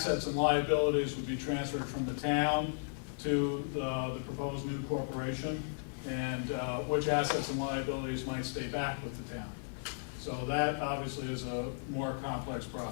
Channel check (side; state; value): right; silent; 54 dB below the other